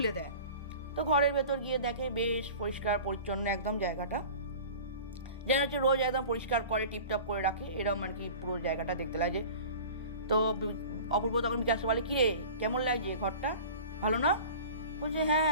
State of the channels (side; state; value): both; inverted; correlation -0.40